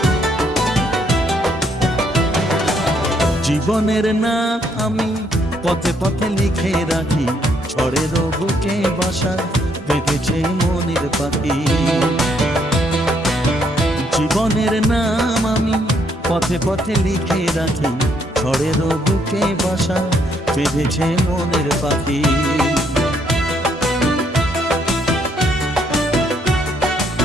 জীবনের না আমি পথে পথে লিখে রাখি, ঝড়ের বুকে বাসা বেঁধেছে মনের পাখি। জীবনের নাম আমি পথে পথে লিখে রাখি, ঝড়ের বুকে বাসা বেঁধেছে মনের পাখি।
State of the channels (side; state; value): both; normal; correlation 0.71